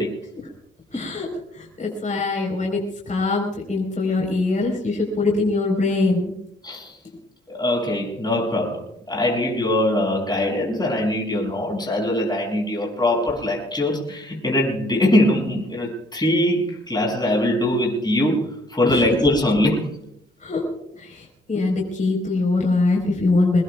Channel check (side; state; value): both; normal; correlation 0.64